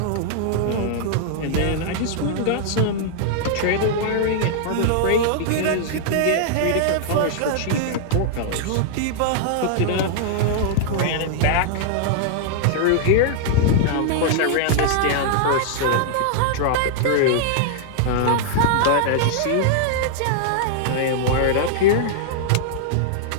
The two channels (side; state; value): both; different; correlation -0.01